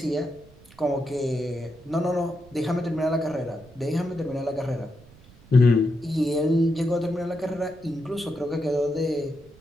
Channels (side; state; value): right; noise; rumble, 24 dB below the sound